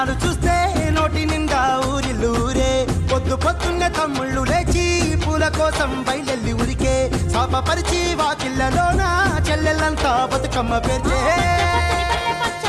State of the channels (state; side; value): identical; both; correlation 1.00